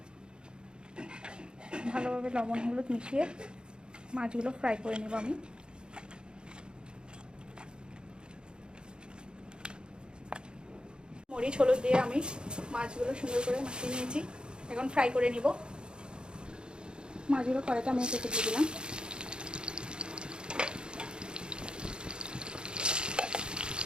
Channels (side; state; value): left; late; 0.050 ms